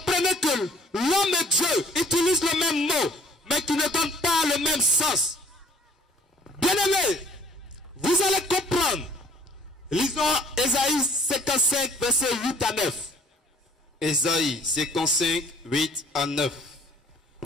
que l'homme et Dieu utilisent le même mot, mais qui ne donnent pas le même sens. Bien-aimés, vous allez comprendre. Lisons Ésaïe 55, versets 8 à 9. Ésaïe 55, 8 à 9.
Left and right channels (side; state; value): both; normal; correlation 0.56